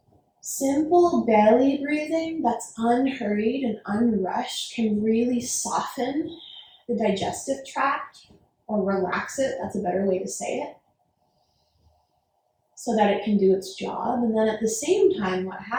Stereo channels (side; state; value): both; identical; correlation 1.00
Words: Simple belly breathing that's unhurried and unrushed can really soften the digestive tract, or relax it, that's a better way to say it, so that it can do its job. And then at the same time, what